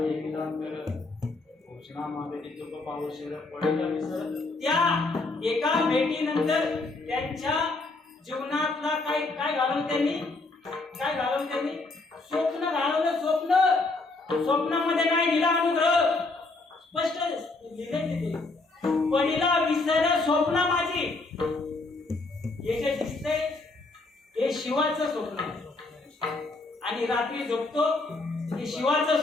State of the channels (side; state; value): right; quieter; 3.4 dB